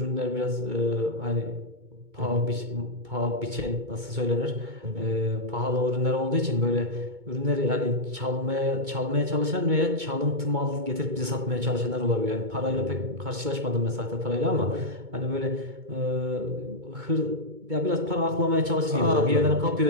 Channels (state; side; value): late; left; 2.2 ms